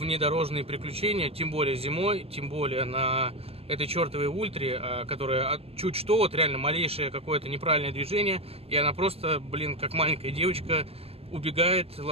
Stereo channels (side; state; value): left; late; 0.29 ms